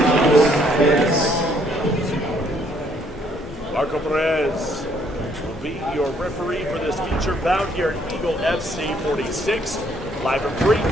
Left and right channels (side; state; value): both; normal; correlation 0.66